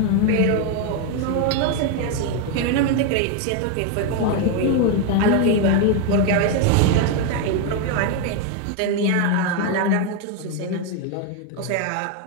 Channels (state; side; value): different; both; correlation 0.01